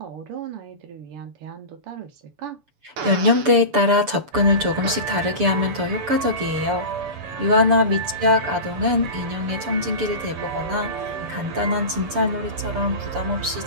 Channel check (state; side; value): late; left; 6.9 ms